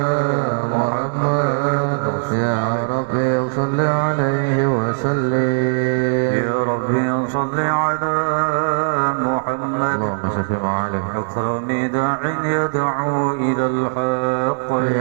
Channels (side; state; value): left; silent; digital silence